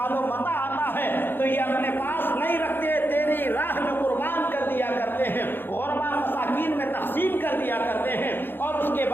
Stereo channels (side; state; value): right; late; 0.099 ms